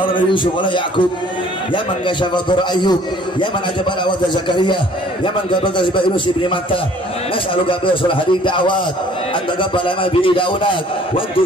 من يوسف ولا يعقوب يا من كشف ضر أيوب يا من أجاب دعوة زكريا يا من قبل تسبح يونس بن متى نسألك بأصل هذه الدعوات أن تقبل ما به دعوناك وأن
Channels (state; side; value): normal; both; correlation 0.55